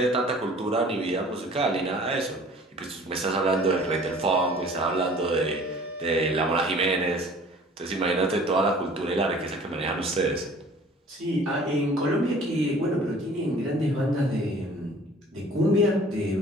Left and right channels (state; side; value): normal; both; correlation 0.49